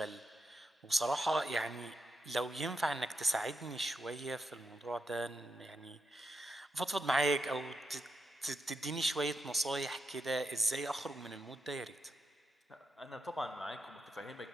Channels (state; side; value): normal; both; correlation 0.85